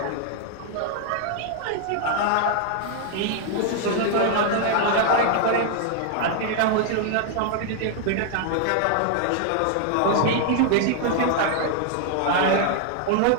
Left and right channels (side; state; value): both; different; correlation 0.00